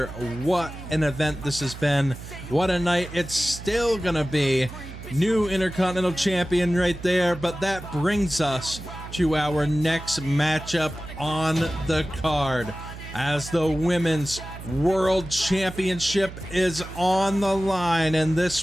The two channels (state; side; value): noise; right; hum, 13 dB below the sound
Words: What an event this has been. What a night it's still gonna be. New Intercontinental Champion right there, but that brings us to our next matchup on the card, as the Women's World Championship is on the line, and